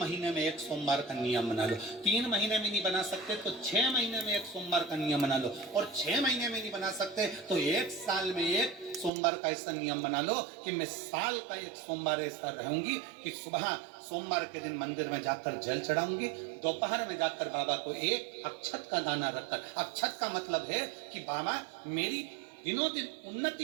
में एक सोमवार का नियम बना लो। 3 महीने में नहीं बना सकते तो 6 महीने में एक सोमवार का नियम बना लो। और 6 महीने में नहीं बना सकते तो 1 साल में एक सोमवार का ऐसा नियम बना लो कि मैं साल का एक सोमवार ऐसा रहूंगी कि सुबह सोमवार के दिन मंदिर में जाकर जल चढ़ाऊंगी, दोपहर में जाकर बाबा को एक अक्षत का दाना रखकर, अक्षत का मतलब है कि बाबा मेरी दिनों दिन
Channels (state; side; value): drops out; left; at 9.1 s